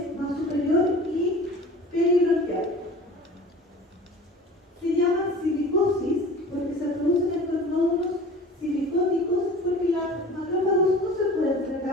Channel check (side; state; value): both; normal; correlation 0.41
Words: más superior y peribronquial. Se llama silicosis porque se producen estos nódulos silicóticos porque la macrófagos no se puede